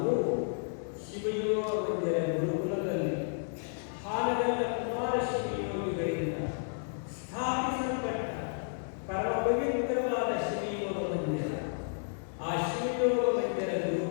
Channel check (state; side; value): silent; right; 56 dB below the other